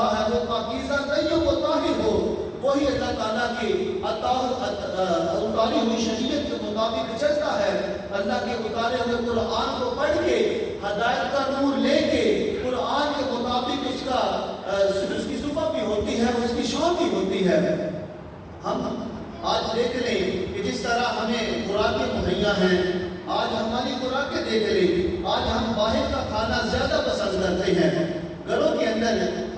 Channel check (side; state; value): both; identical; correlation 1.00